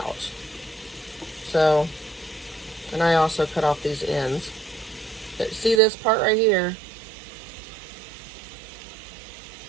So, and I also cut off these ends. But see this part right here?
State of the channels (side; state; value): left; drops out; at 5.8 s